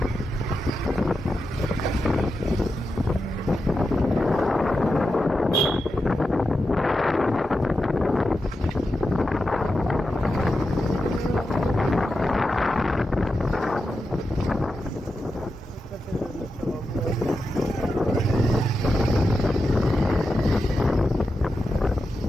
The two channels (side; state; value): both; normal; correlation 0.89